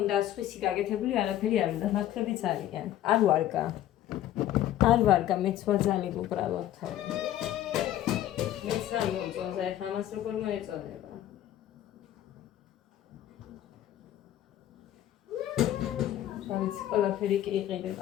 სხვისი გაკეთებული არაფერი არ უნდა ნაკლებიც არიან არ ვარგა მეც ვაძალებ უბრალოდ მეც არ მომწონს აი ამას როგორ მოეწონება შავიც ყველაფერი კი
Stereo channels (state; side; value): quieter; right; 12.5 dB